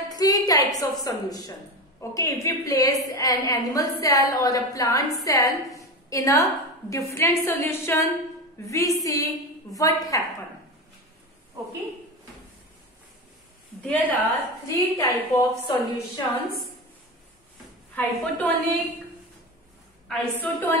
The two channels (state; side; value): normal; both; correlation 0.22